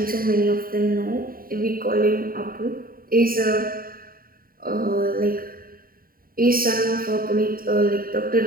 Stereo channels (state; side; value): late; left; 0.42 ms